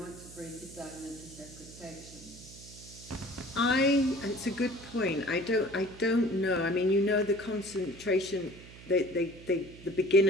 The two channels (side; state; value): right; noise; hum, 18 dB below the sound